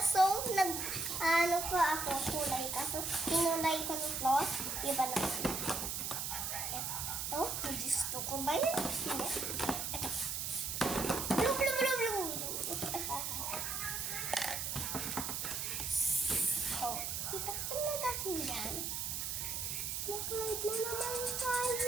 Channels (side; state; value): right; noise; hiss, 2 dB below the sound